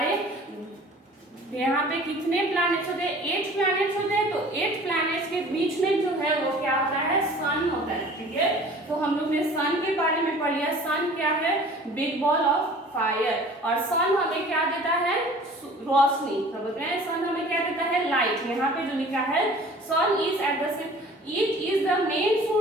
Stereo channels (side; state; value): both; normal; correlation 0.47